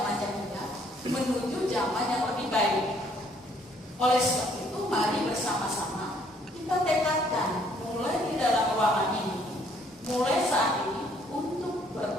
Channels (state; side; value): normal; both; correlation 0.64